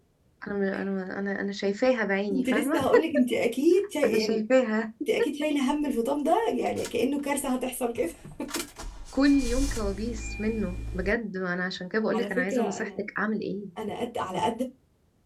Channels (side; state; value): both; identical; correlation 1.00